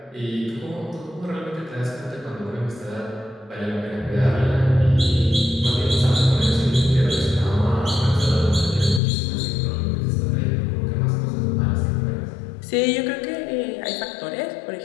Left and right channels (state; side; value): drops out; right; at 9.0 s